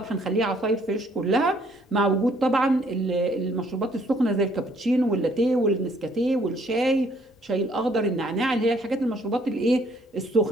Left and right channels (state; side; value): normal; both; correlation 0.64